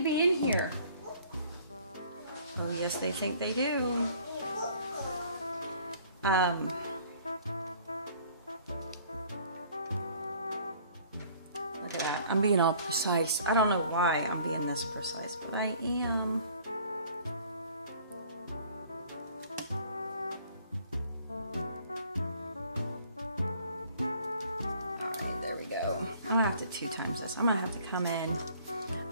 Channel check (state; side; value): inverted; both; correlation -0.55